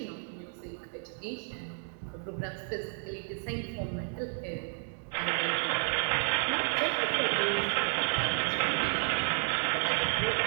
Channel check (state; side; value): silent; left; 57 dB below the other